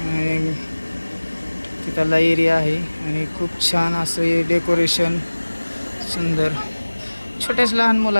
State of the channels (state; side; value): inverted; both; correlation -1.00